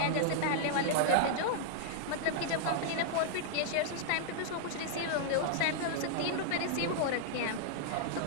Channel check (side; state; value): both; different; correlation -0.01